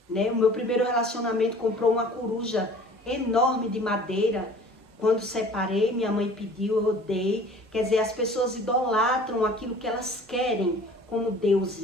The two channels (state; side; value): normal; both; correlation 0.48